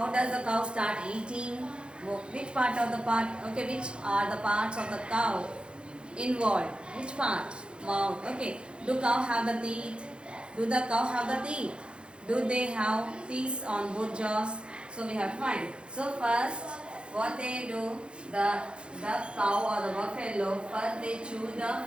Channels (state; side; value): late; left; 0.055 ms